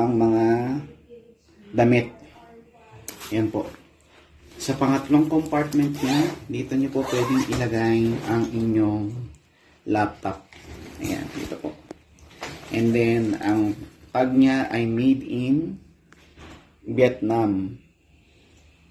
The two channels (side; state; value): both; identical; correlation 1.00